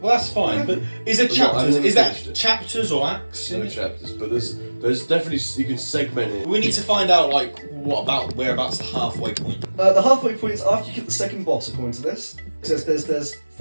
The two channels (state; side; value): inverted; both; correlation -1.00